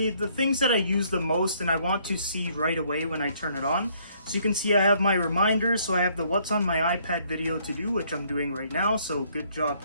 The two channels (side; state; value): both; inverted; correlation -0.65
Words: the things that I use the most and I want to see right away when I turn it on. So you can see I have my reminders, so I have the what's on my iPad video to do, which I'm doing right now, so good job